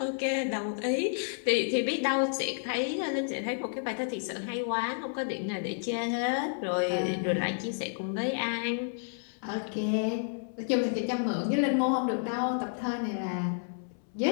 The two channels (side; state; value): right; silent; 57 dB below the other